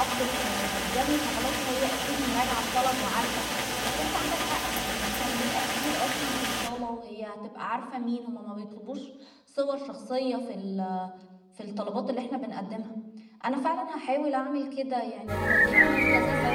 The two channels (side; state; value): both; identical; correlation 1.00